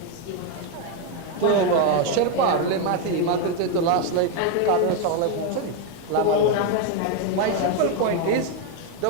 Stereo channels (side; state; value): both; different; correlation 0.01